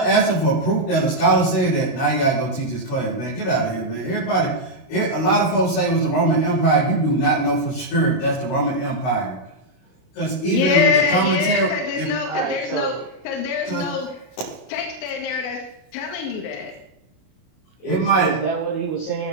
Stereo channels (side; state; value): right; late; 32 ms